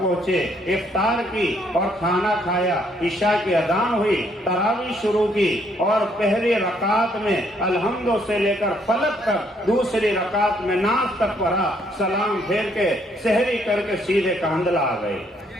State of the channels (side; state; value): both; normal; correlation 0.69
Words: افطار کی اور کھانا کھایا، عشاء کی اذان ہوئی، تراویح شروع کی اور پہلی رکعت میں الحمد سے لے کر فلق تک، دوسری رکعت میں ناز تک پڑھا، سلام پھیر کے سحری کر کے سیدھے کاندلہ آ گئے،